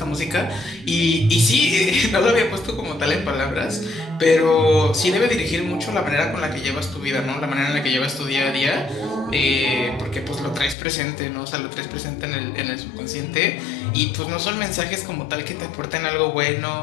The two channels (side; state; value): right; drops out; at 10.8 s